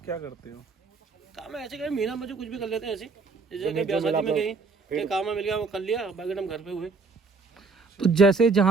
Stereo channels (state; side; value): quieter; left; 4.2 dB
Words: क्या करते हो? काम है ऐसे कहीं महीना में जो कुछ भी कर लेते हैं ऐसे, जैसे कहीं ब्याह शादी में गई कहीं काम में मिल गया वो कर लिया, बाकी हम घर पे हुए। तो जैसे